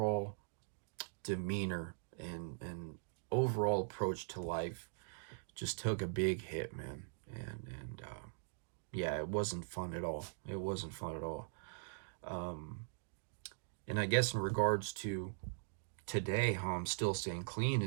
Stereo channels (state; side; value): silent; left; digital silence